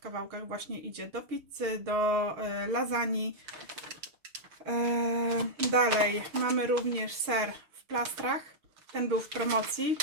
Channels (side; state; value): left; late; 6.7 ms